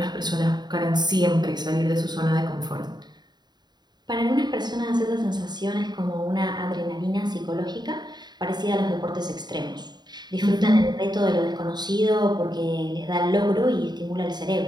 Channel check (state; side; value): late; left; 0.20 ms